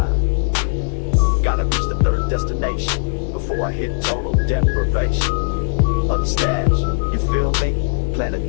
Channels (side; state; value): right; silent; 65 dB below the other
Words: Gotta reach the third destination before I hit total deprivation of the stash. You feel me? Planet